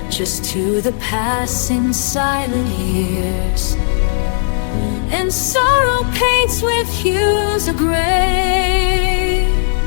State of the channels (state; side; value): silent; right; 62 dB below the other